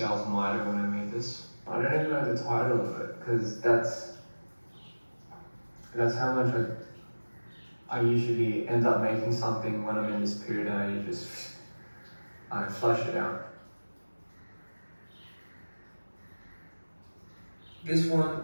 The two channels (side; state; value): both; inverted; correlation -1.00